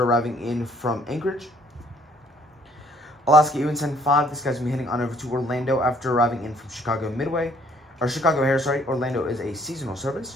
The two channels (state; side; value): normal; both; correlation 0.62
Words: arriving in from Anchorage. Alaska UN-75, this guy's going to be heading on over to Orlando after arriving in from Chicago Midway. Or Chicago Air, sorry. Orlando is a seasonal service.